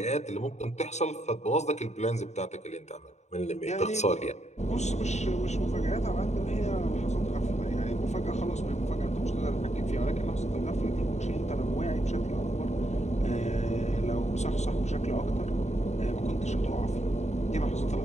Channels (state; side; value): late; right; 0.33 ms